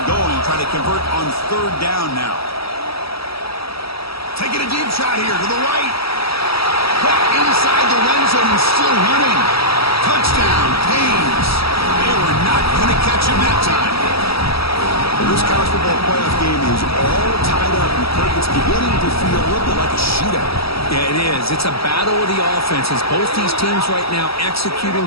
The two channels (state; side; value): late; right; 0.76 ms